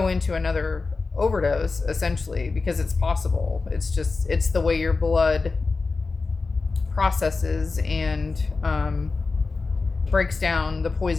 into another overdose, essentially, because it's possible. It's the way your blood processes and breaks down the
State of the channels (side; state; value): right; quieter; 4.1 dB